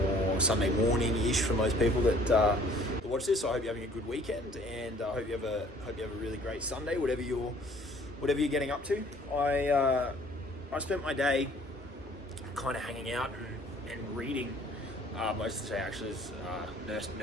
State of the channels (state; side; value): normal; both; correlation 0.55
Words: Sunday morning-ish for most people that watch this. So I hope you're having a good weekend, and I hope you have a really great Sunday, whatever you're getting up to. I spent my day kind of hanging out and reading. Most of the day actually is